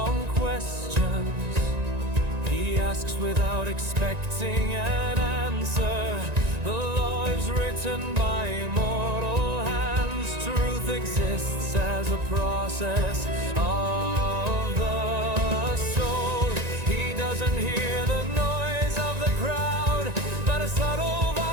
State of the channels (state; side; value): late; left; 1.9 ms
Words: questions, he asks without expecting an answer. The law is written by immortal hands. Truth exists as a process of the